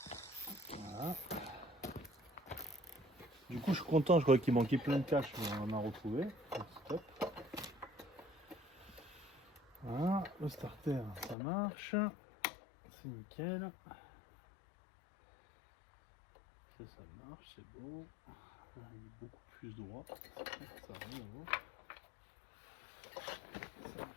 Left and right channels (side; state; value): right; drops out; at 11.4 s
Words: Voilà. Du coup, je suis content, je croyais qu'il manquait plein de caches, mais on en a retrouvé. Stop. Voilà, le starter, ça marche. C'est nickel. Ça marche, c'est bon. On est beaucoup plus droit. Ça va, bon.